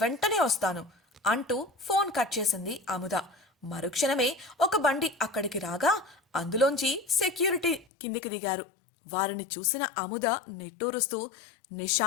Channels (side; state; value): right; drops out; at 7.9 s